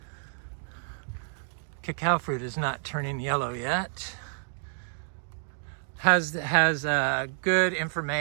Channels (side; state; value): left; silent; digital silence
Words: cacao fruit is not turning yellow yet. Has good